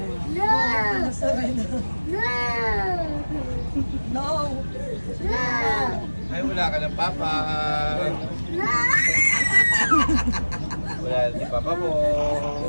Ay, wala ka ng Papa. Wala si Papa mo.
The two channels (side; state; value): both; inverted; correlation -1.00